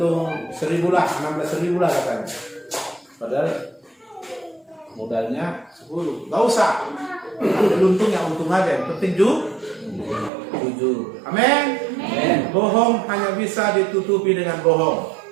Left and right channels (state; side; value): drops out; left; at 10.3 s